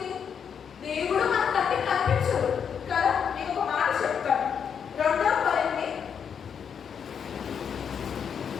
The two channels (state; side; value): quieter; right; 7.3 dB